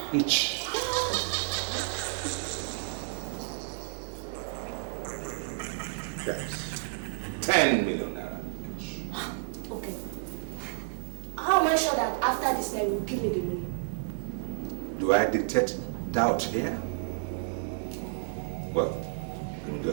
each? Yes. 10 million naira each. Okay. How am I sure that after this night you will give me the money? Do I detect doubt here? Well, in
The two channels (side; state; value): left; silent; digital silence